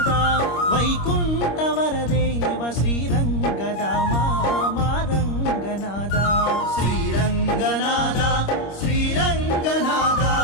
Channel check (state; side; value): late; right; 25 ms